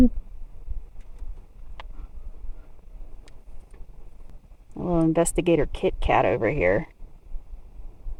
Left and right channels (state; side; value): identical; both; correlation 1.00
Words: A little investigator Kit Kat over here.